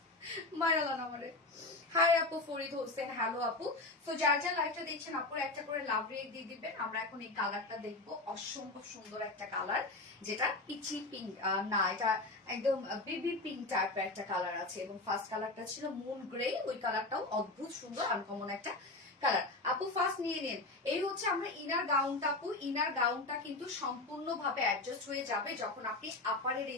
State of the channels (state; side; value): quieter; right; 3.1 dB